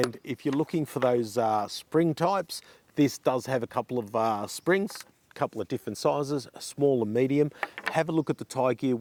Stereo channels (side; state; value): both; identical; correlation 1.00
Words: if you're looking for those spring types, this does have a couple of springs, a couple of different sizes, a small and medium. Have a look at the Tiegear